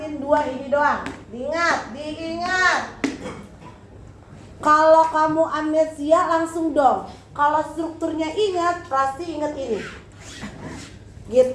dua ini doang. Diingat. Kalau kamu amnesia langsung dong. Kalau strukturnya ingat, pasti ingat ini.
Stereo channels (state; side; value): identical; both; correlation 1.00